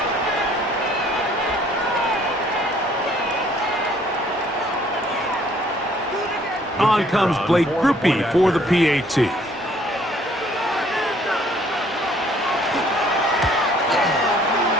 On comes Blake Grupe for the PAT.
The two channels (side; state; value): both; normal; correlation 0.60